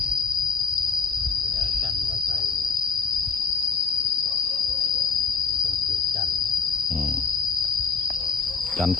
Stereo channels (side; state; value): right; quieter; 5.4 dB